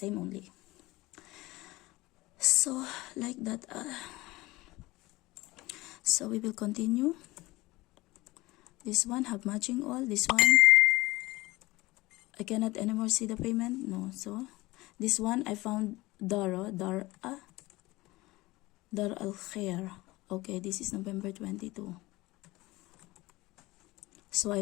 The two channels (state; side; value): quieter; right; 20.3 dB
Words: only. So like that. So we will continue. This one have matching all. This one I cannot anymore see the payment. No. So this one I found Dar al-Khair. Okay, this is November 22. So I